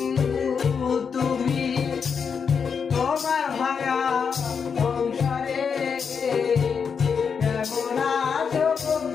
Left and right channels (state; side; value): quieter; right; 6.3 dB